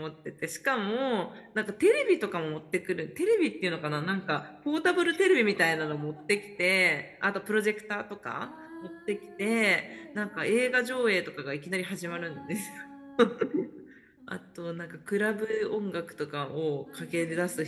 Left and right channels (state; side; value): identical; both; correlation 1.00